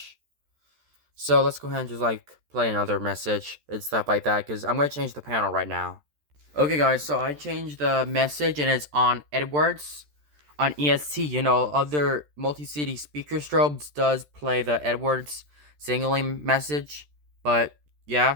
So let's go ahead and just like play another message and stuff like that, because I'm going to change the panel right now. Okay guys, so I changed the message and it's on Edwards. On ESC, other multi-city speaker strobes does play the Edwards signaling message. But yeah,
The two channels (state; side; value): late; left; 13 ms